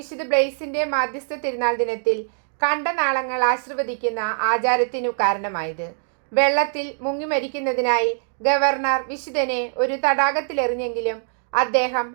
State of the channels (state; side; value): silent; left; digital silence